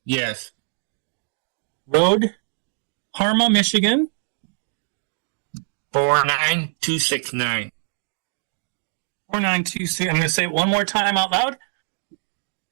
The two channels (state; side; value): silent; left; digital silence